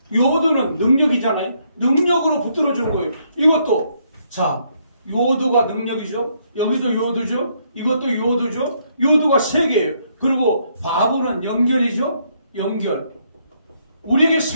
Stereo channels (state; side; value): inverted; both; correlation -0.72